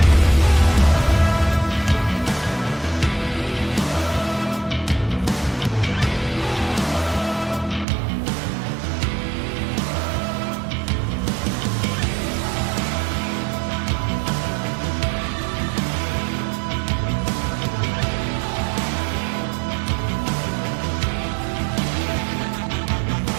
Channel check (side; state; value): left; drops out; at 7.9 s